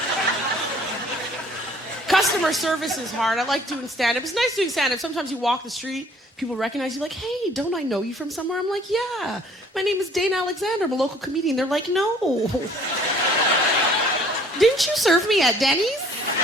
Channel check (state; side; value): normal; both; correlation 0.56